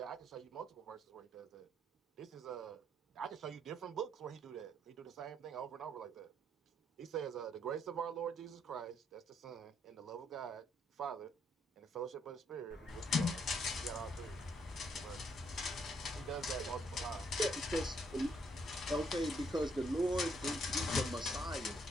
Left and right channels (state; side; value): normal; both; correlation 0.71